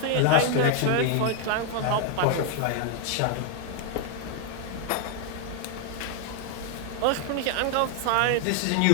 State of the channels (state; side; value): different; both; correlation 0.00